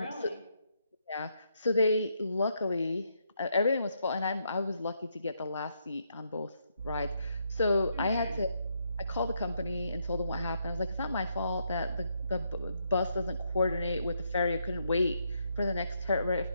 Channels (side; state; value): both; inverted; correlation -0.77